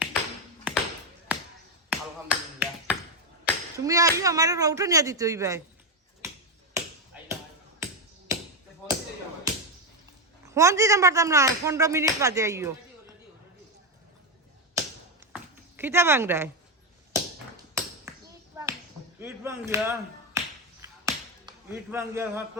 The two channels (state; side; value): normal; both; correlation 0.07